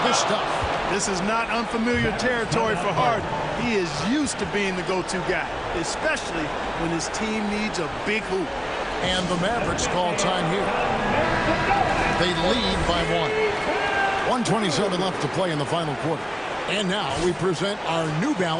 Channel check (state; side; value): identical; both; correlation 1.00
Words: the stuff. This is not unfamiliar territory for Harden. He is used to being the go-to guy, especially when his team needs a big hoop. And the Mavericks call time here. They lead by 1. 1:27 left to play in the final quarter. And now we present our New